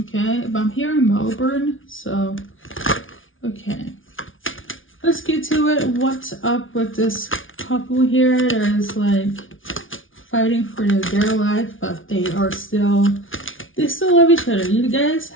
okay? But I'm here in Melbourne, so okay. Let's get to it. What's up with this couple here that is like fighting for their life, but they still love each other. You guys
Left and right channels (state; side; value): late; right; 0.57 ms